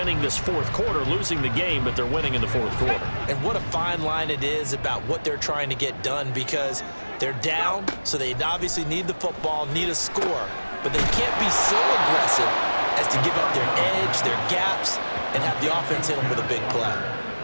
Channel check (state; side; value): inverted; both; correlation -1.00